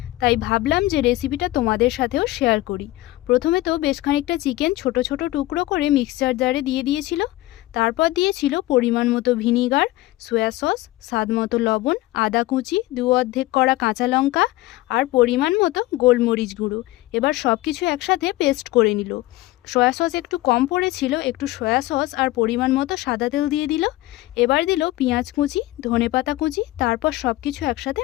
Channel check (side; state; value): right; quieter; 17.8 dB